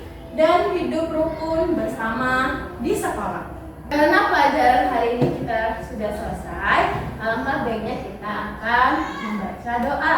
dan hidup rukun bersama di sekolah. Karena pelajaran hari ini kita sudah selesai, alangkah baiknya kita akan membaca doa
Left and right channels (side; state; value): both; identical; correlation 1.00